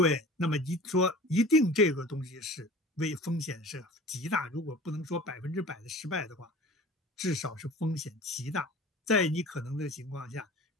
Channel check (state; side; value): normal; both; correlation 0.41